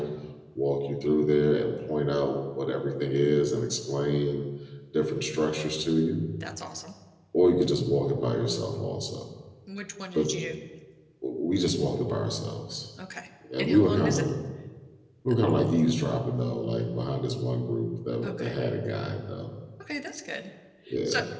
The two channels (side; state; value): both; identical; correlation 1.00